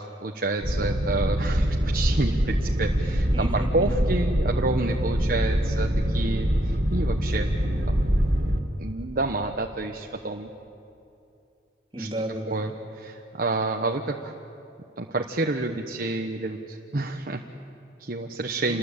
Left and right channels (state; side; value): normal; both; correlation 0.66